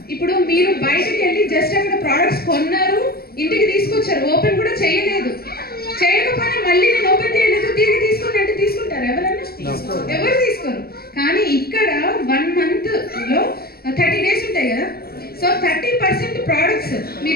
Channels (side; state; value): right; late; 0.45 ms